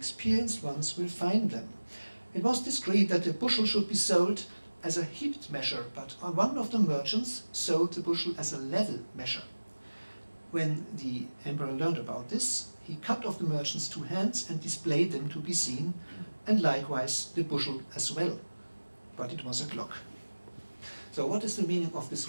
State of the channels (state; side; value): inverted; both; correlation -1.00